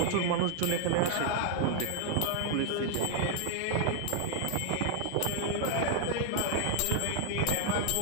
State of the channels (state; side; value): different; both; correlation 0.00